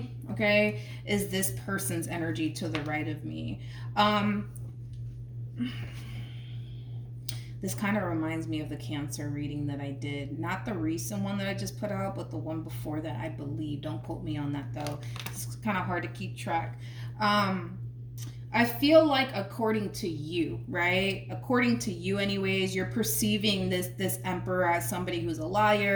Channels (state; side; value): identical; both; correlation 1.00